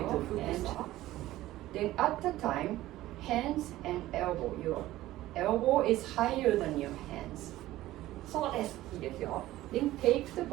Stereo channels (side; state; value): left; quieter; 15.7 dB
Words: And then at the time, hands and elbow. Your elbow is higher than your hands. そうです。いいですよ。Then take the